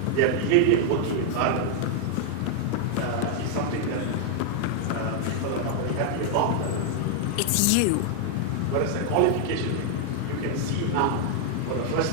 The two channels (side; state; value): both; different; correlation 0.00